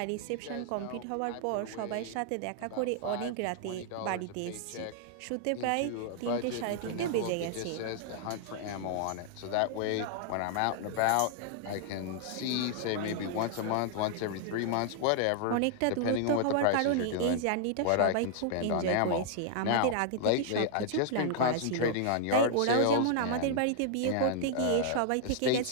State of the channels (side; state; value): both; different; correlation -0.01